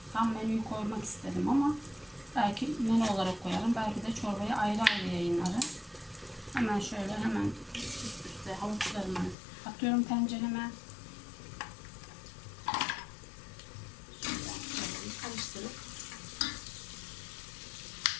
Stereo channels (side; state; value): right; drops out; at 9.3 s